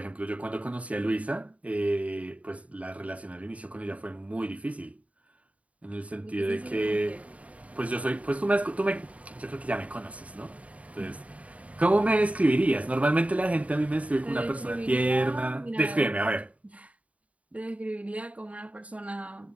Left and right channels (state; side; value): late; left; 0.067 ms